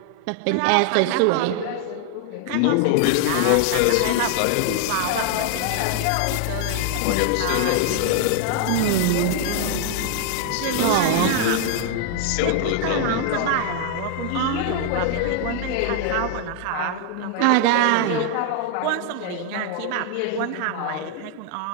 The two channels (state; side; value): different; both; correlation 0.00